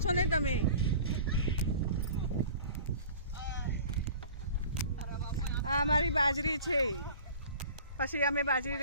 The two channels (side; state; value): both; inverted; correlation -0.43